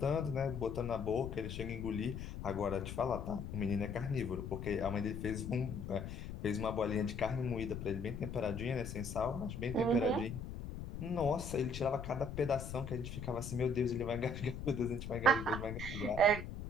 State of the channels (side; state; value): left; noise; rumble, 7 dB below the sound